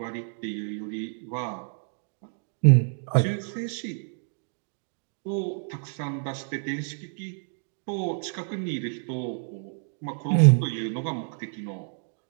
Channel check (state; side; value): silent; left; 59 dB below the other